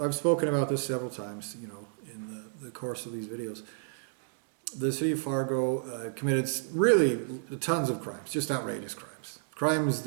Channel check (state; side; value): silent; left; digital silence